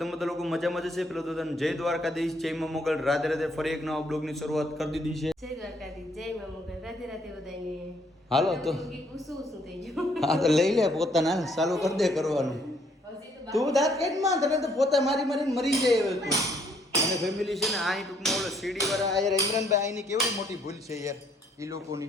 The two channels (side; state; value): both; normal; correlation 0.67